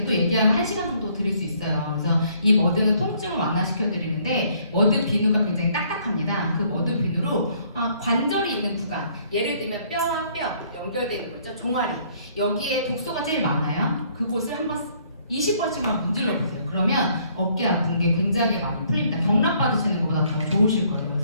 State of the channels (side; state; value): both; inverted; correlation -0.64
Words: 또 얘기하면 1시간 정도 드릴 수 있어요. 그래서 이 머드는 통증을 완화시켜드리는데 머드 비누가 굉장히 딱딱합니다. 그 머드 비누로 관절이 있는 구간, 예를 들면 뼈와 뼈 연결되는 거 있죠? 종아리. 여기에 독소가 제일 많아요. 그곳을 한번 20번씩만 문질러 보세요. 그러면 어깨 아픈 게 굉장히 많이 풀립니다. 경락 받으시는 것보다 더 좋으실 거예요.